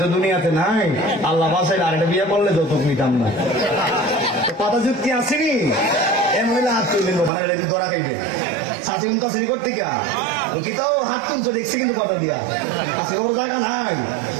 তো দুনিয়াতে নাই, আল্লাহ বাসাইলে আরেকটা বিয়ে করলে যৌতুক নিতাম না। কথা যুক্তি আসেনি এমন হলে হাত তুলে মানে ধরা খাইবে। শাসি উন কাছে করতে গা কি তাও হাত তুলছো দেখছি কিন্তু কথা দিয়া আজকে ওর জায়গা নাই।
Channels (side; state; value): left; drops out; at 7.3 s